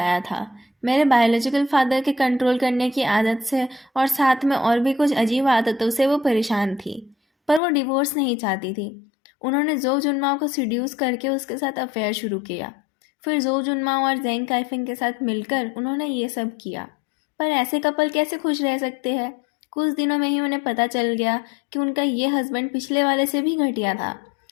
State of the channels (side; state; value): right; drops out; at 7.6 s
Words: था। मेरे बायोलॉजिकल फादर के कंट्रोल करने की आदत से और साथ में और भी कुछ अजीब आदतों से वो परेशान थी। पर वो डिवोर्स नहीं चाहती थी। उन्होंने जो जुनमाओ को सीड्यूस करके उसके साथ अफेयर शुरू किया। फिर जो जुनमाओ और जेंग काइफिंग के साथ मिलकर उन्होंने ये सब किया। पर ऐसे कपल कैसे खुश रह सकते हैं? कुछ दिनों में ही उन्हें पता चल गया कि उनका ये हस्बैंड पिछले वाले से भी घटिया था।